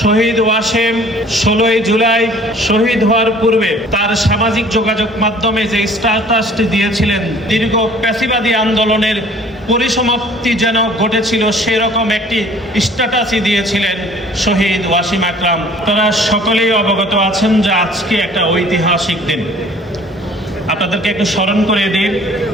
শহীদ ওয়াসিম 16ই জুলাই শহীদ হওয়ার পূর্বে তার সামাজিক যোগাযোগ মাধ্যমে যে স্ট্যাটাসটি দিয়েছিলেন, দীর্ঘ প্যাসিবাদী আন্দোলনের পরিসমাপ্তি যেন ঘটেছিল সেরকম একটি স্ট্যাটাসই দিয়েছিলেন শহীদ ওয়াসিম আকরাম। তারা সকলেই অবগত আছেন যে আজকে একটা ঐতিহাসিক দিন। আপনাদেরকে একটু স্মরণ করে দিই,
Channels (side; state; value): both; normal; correlation 0.52